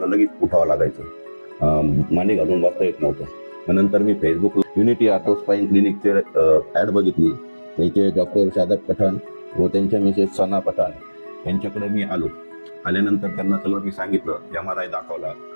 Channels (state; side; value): inverted; both; correlation -1.00